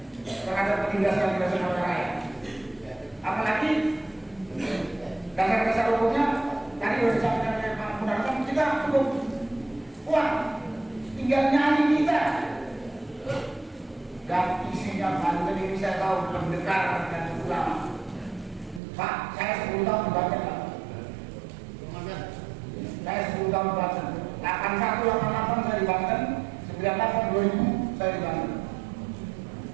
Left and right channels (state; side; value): drops out; left; at 18.8 s